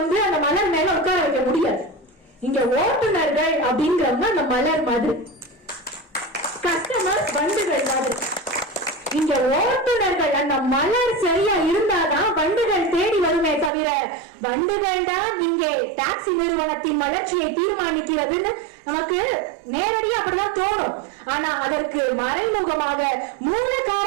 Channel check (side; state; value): left; drops out; at 13.7 s